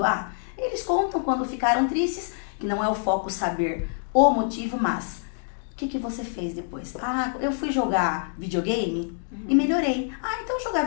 Eles contam quando ficaram tristes, que não é o foco saber o motivo, mas o que você fez depois? Eu fui jogar videogame e melhorei. Então jogar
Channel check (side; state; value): right; silent; digital silence